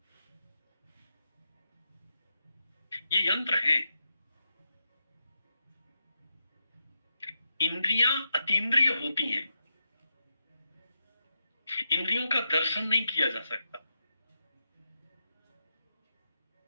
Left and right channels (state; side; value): inverted; both; correlation -0.85